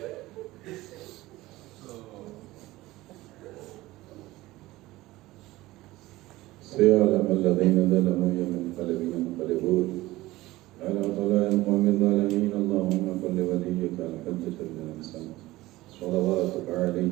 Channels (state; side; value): quieter; left; 18.2 dB